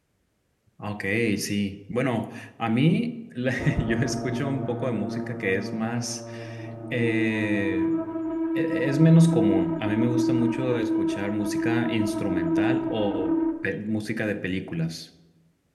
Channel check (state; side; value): identical; both; correlation 1.00